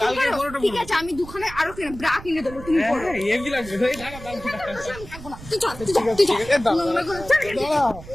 কালকে তুমি পরো। বড়টা ঠিক পরবো। আছে, আমি দুখানে আরো কিনে ব্রা কিনে দেবো, তুমি পরো। হ্যাঁ হেভি লাগছে। এই দাঁড়া, দাঁড়া, দাঁড়া। আমি থাকবো না। তুই চল, তুই চল, তুই চল। ঠিক আছে, দাঁড়া, নোংরা করে- চল, চল, চল। দাঁড়া।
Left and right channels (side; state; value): right; noise; rumble, 15 dB below the sound